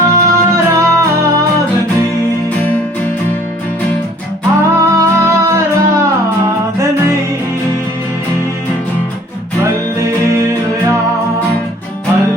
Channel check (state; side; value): normal; both; correlation 0.55